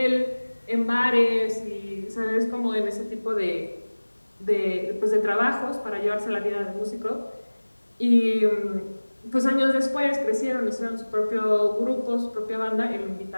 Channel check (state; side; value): inverted; both; correlation -1.00